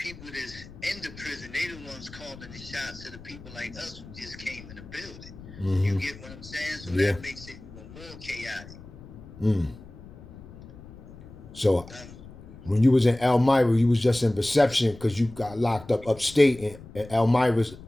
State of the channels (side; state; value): left; noise; rumble, 17 dB below the sound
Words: that's in the prison, they the ones calling the shots to the people like us who just came in the building. Mm-hmm. You get what I'm saying? So that makes it even more chaotic. So when you was in Elmira, you was just in reception because you got locked up upstate, in Elmira's